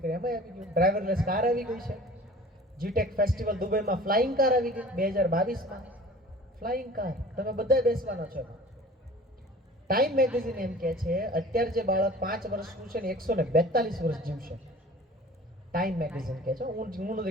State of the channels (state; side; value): normal; both; correlation 0.45